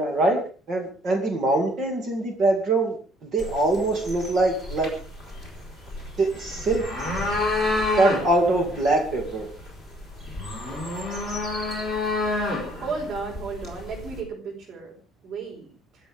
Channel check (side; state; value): both; normal; correlation 0.62